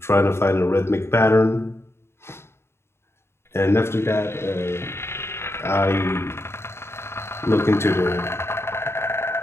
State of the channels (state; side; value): late; right; 0.12 ms